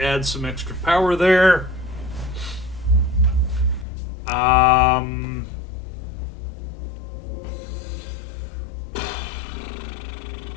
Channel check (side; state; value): right; drops out; at 3.9 s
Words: add some extra power there.